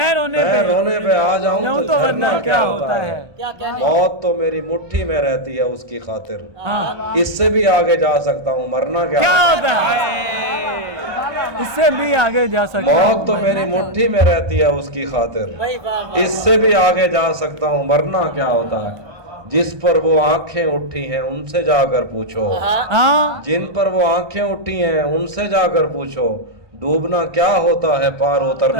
रोने पे आ जाऊं तो वरना क्या होता है। मौत तो मेरी मुट्ठी में रहती है उसकी खातिर, हाँ इससे भी आगे जा सकता हूँ मरना क्या क्या होता है इससे भी आगे जा सकता मौत तो मेरी मुट्ठी में रहती है उसकी खातिर, इससे भी आगे जा सकता हूँ मरना क्या होता है। जिस पर वो आंखें उठी हैं उनसे जाकर पूछो, हाँ जिन पर वो आंखें उठी हैं उनसे जाकर पूछो। डूबना क्या होता है पार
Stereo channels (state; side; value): late; left; 1.2 ms